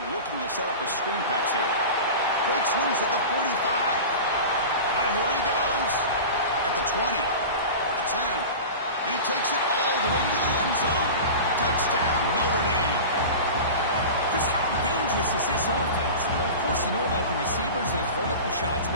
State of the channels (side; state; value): both; inverted; correlation -0.31